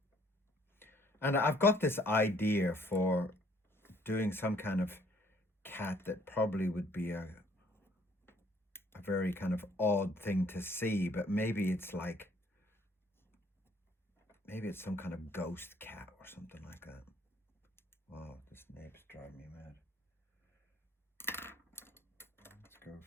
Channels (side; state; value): both; normal; correlation 0.62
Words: And I've got this idea for doing some kind of cat that probably would be a very kind of odd thing to see, but maybe it's some kind of ghost cat or something like that. Wow, this nib's driving me mad. Let's go